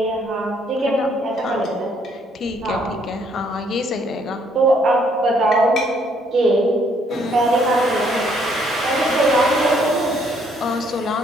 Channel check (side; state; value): both; normal; correlation 0.67